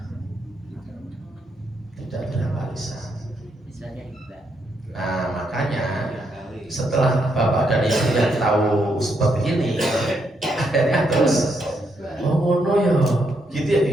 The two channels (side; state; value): both; normal; correlation 0.78